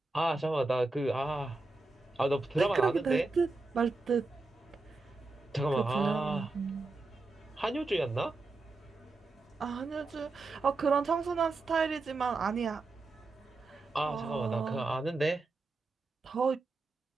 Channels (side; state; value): left; quieter; 3.4 dB